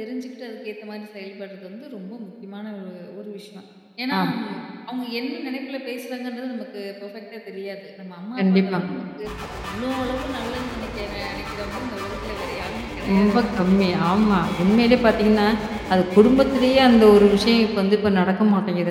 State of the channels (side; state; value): both; identical; correlation 1.00